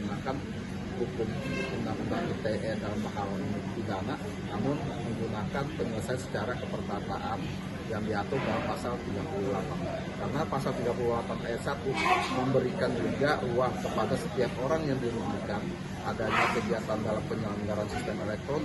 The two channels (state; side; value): identical; both; correlation 1.00